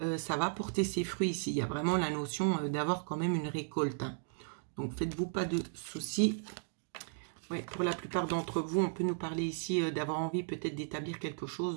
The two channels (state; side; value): silent; left; digital silence